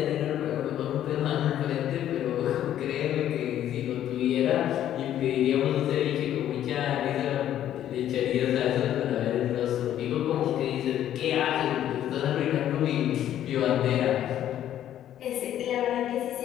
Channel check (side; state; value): right; quieter; 11.4 dB